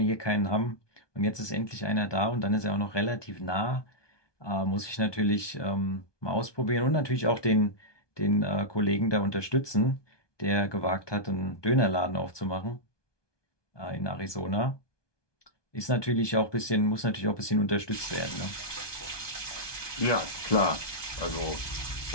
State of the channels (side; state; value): right; late; 1.2 ms